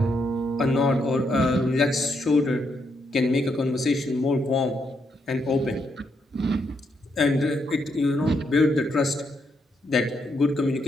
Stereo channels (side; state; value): both; normal; correlation 0.78